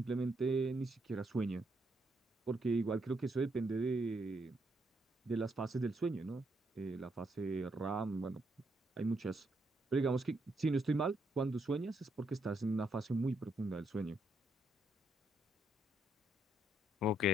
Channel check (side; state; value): both; normal; correlation 0.76